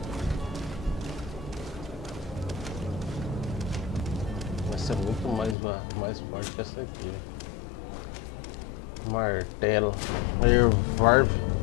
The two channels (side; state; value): right; drops out; at 5.6 s